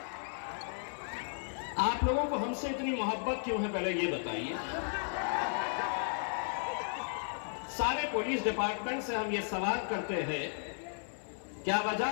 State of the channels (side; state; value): right; silent; digital silence